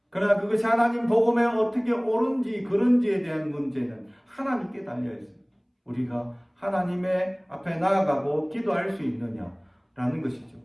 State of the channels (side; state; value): both; identical; correlation 1.00